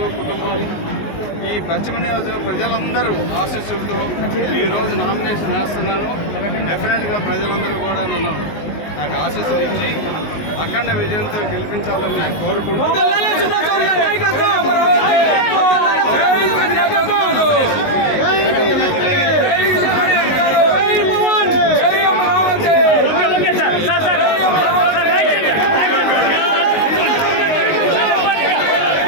కుటుంబాలు, ఈ పశ్చిమ నియోజకవర్గ ప్రజలందరూ ఆశీస్సులతో ఈరోజు నామినేషన్ వేస్తున్నాను. డెఫినెట్గా ప్రజలందరూ కూడా నాకు ఆశీస్సులు ఇచ్చి అఖండ విజయంతో గెలిపించాలని కోరుకుంటున్నాను.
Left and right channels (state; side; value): late; right; 19 ms